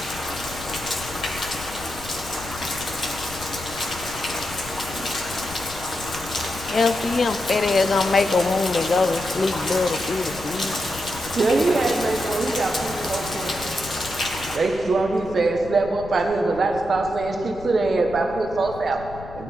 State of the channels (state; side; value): noise; left; rumble, 14 dB below the sound